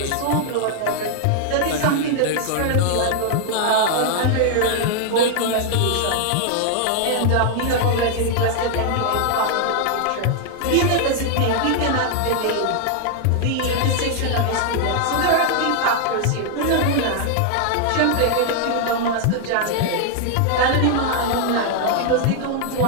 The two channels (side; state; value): both; different; correlation 0.00